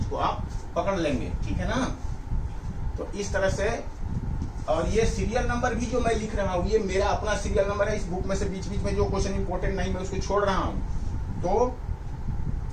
को आप पकड़ लेंगे, ठीक है ना। तो इस तरह से, और ये सीरियल नंबर भी जो मैं लिख रहा हूँ, ये मेरा अपना सीरियल नंबर है, इस बुक में से बीच बीच में जो क्वेश्चन इंपॉर्टेंट नहीं मैं उसको छोड़ रहा हूँ। तो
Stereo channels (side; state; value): both; identical; correlation 1.00